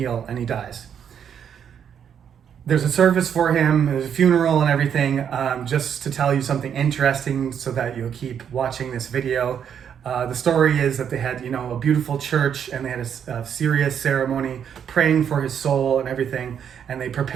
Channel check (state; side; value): quieter; left; 8.3 dB